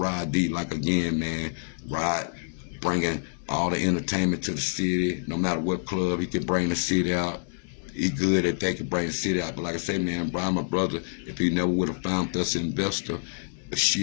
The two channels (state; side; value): silent; right; 60 dB below the other